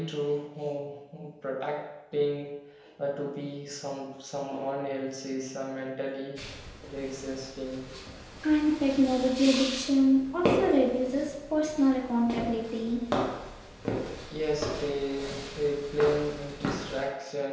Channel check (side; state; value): both; identical; correlation 1.00